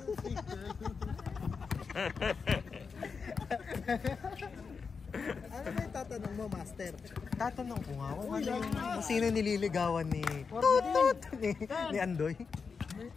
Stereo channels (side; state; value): right; quieter; 5.4 dB